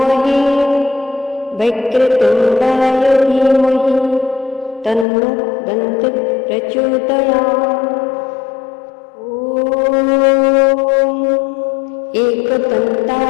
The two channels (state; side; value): drops out; right; at 5.1 s